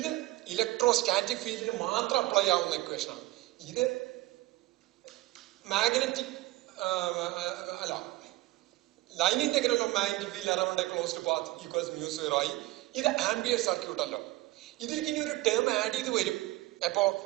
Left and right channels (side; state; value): left; quieter; 18.8 dB